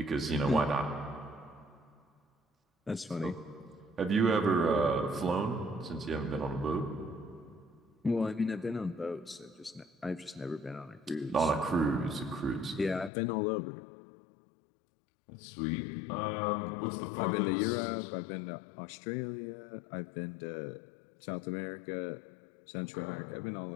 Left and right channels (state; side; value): drops out; right; at 13.1 s